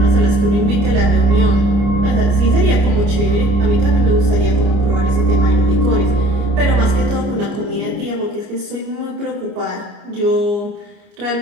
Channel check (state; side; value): late; left; 29 ms